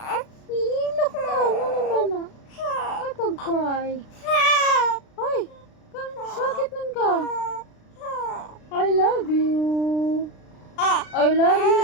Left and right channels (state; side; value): late; right; 36 ms